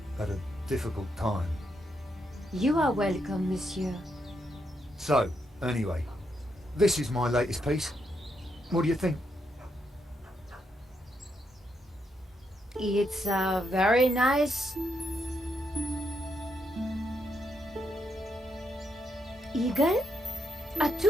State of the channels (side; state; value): both; normal; correlation 0.80